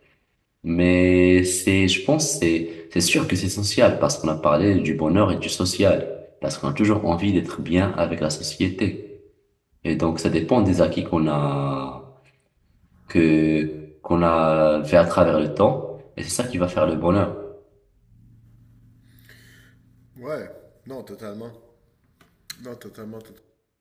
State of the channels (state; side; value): identical; both; correlation 1.00